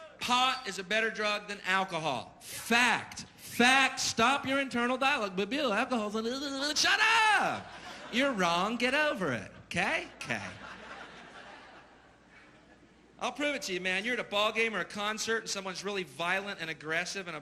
Pot is a better drug than alcohol. Fact. Fact. Stop your internal dialogue. But Bill, alcohol's... Shut up! You're wrong. Get over it. Okay? Okay. I'll prove it to you, man. You're at a ball game or a concert and someone's really violent and aggressive and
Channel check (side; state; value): both; identical; correlation 1.00